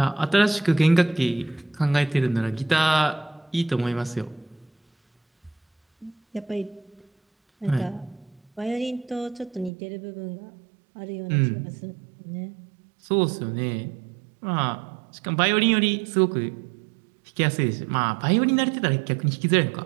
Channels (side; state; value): left; drops out; at 9.7 s